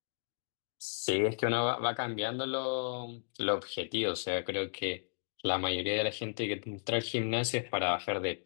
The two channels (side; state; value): right; silent; digital silence